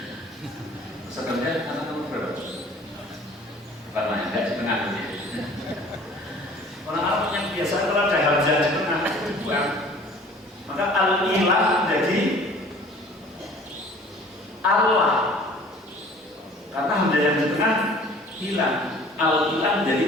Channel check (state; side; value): normal; both; correlation 0.49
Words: Peserta kerja anak nomor berapa? Bukan lah, enggak di tengah gitu. Orang Arab punya kebiasaan kalau ada hamzah di tengah itu buang. Maka al-ilah menjadi Allah, karena hamzah yang di tengah hilang. Al-ilah